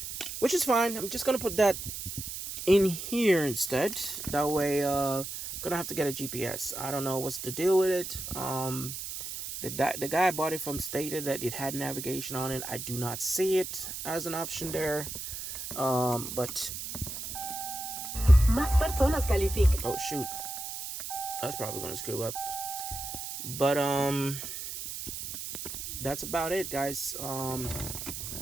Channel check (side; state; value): right; noise; hiss, 7 dB below the sound